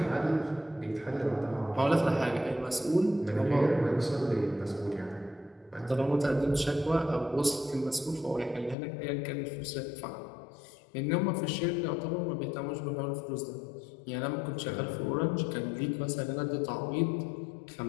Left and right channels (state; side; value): drops out; right; at 8.8 s